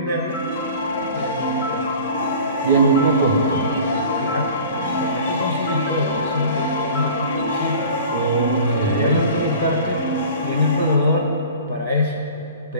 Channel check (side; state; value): both; inverted; correlation -0.42